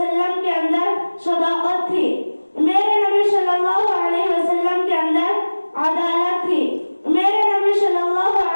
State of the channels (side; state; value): both; inverted; correlation -1.00